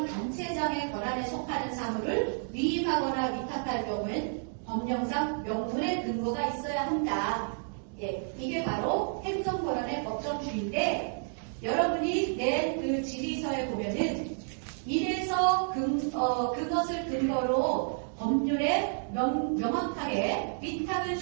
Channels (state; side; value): silent; left; digital silence